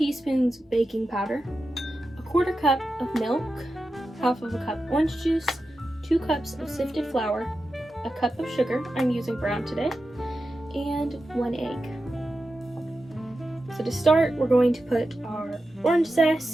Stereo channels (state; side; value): normal; both; correlation 0.91